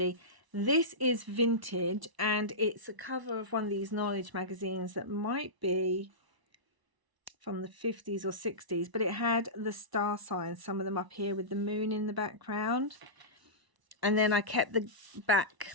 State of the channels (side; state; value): left; late; 1.0 ms